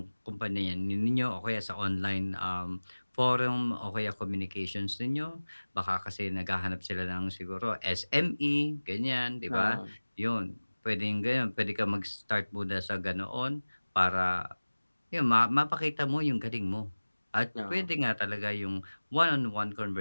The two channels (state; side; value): inverted; both; correlation -1.00